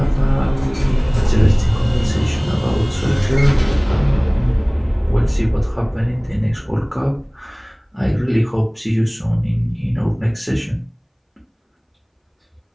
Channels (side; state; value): both; identical; correlation 1.00